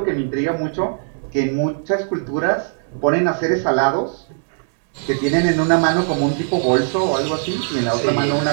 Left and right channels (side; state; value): left; silent; 66 dB below the other